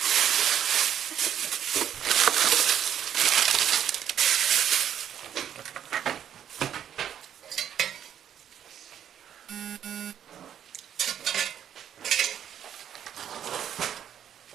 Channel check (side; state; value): left; quieter; 9.7 dB